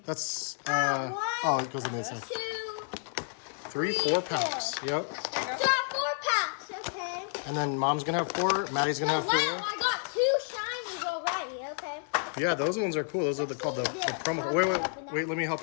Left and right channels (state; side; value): silent; right; 55 dB below the other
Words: That's, it goes in the inside. 2, 3, 4 packs. Yep. so I have 4 packs, okay. And then Mom's going to have 4. Maddie's going to have 4. Wow, I got 2 shinies already, okay. Yeah, those ones are cool. Those are called the promo code. Wait, let me help